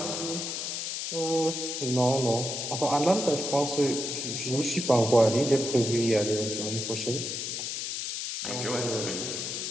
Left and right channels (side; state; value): left; noise; hiss, 4 dB below the sound